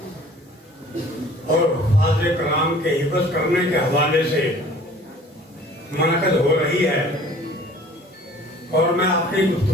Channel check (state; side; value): normal; both; correlation 0.50